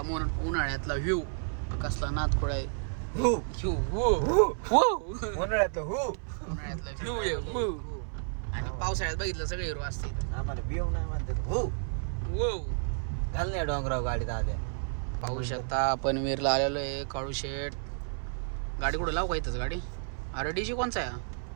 व्ह्यू कसला नादखोळा आहे. हो उन्हाळ्यातला व्ह्यू आहे आणि पावसाळ्यात बघितलं सगळे हिरो असते. आम्हाला व्ह्यू नाही म्हणतात. वो घाल नाही डोंगराव गाडीत आले. पाहू शकता आपण वीरला आलेलो आहे. काळू शेट गाडी कुठं लावू का इथंच गाडी. अरे डीजे कोणचा आहे.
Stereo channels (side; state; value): left; silent; 57 dB below the other